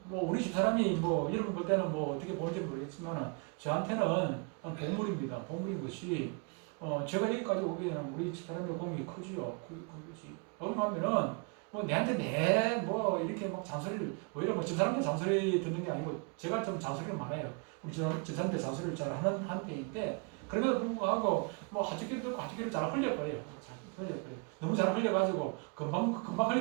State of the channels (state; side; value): quieter; left; 33.6 dB